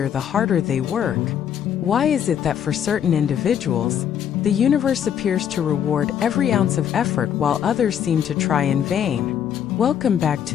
the harder they work? Why is it that for certain individuals, the universe appears to reward every ounce of effort while others seem to try in vain? Welcome back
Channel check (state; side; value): quieter; right; 9.1 dB